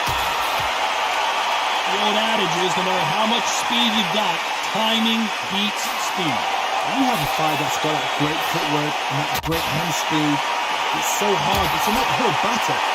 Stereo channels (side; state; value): both; identical; correlation 1.00